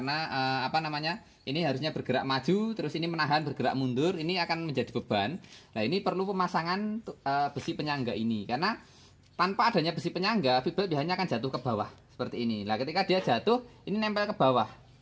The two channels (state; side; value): identical; both; correlation 1.00